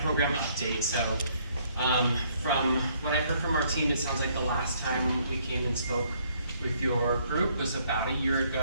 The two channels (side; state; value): both; inverted; correlation -0.66